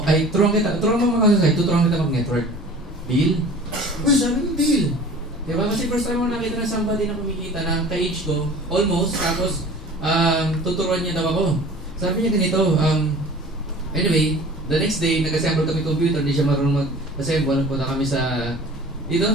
mag-counter-strike, tuturuan kita mag-network. Deal? Uy, sabi mo deal. Diba? Kasi first time mo nakita na somebody na kumikita na ka-age ko, almost, tapos tuturuan niya daw ako. Sabi niya ganito, anyway, the next day, nag-assemble kami computer, hindi siya marunong mag-assemble. Punta kami sa, dito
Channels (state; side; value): normal; both; correlation 0.43